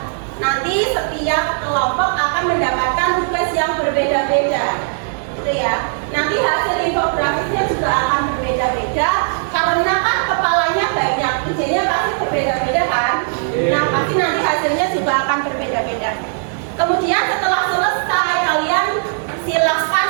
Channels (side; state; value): left; silent; digital silence